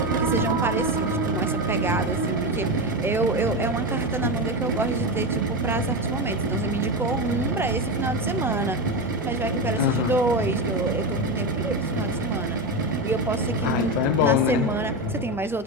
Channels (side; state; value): both; normal; correlation 0.16